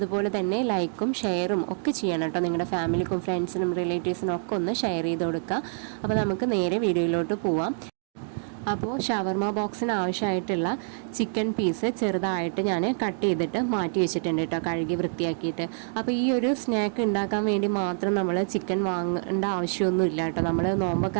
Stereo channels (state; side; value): silent; left; digital silence